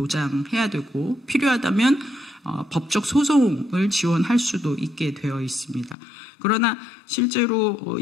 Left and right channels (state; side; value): drops out; right; at 6.0 s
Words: 되고 필요하다면 법적 소송을 지원할 수도 있게 되어 있습니다. 그러나 실제로